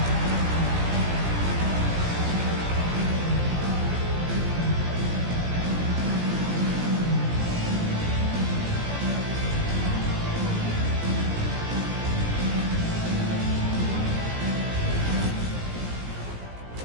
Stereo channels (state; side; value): late; left; 17 ms